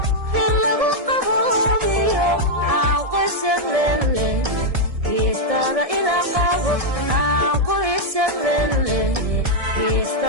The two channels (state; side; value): late; left; 1.7 ms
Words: in lagu qaboobiyo aan qoysag leelehay geestaada ila qabo aan qoysag leelehay